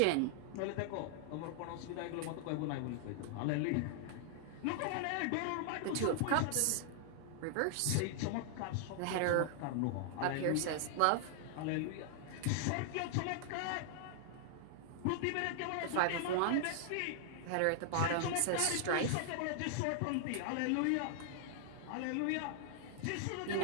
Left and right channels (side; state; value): both; different; correlation -0.01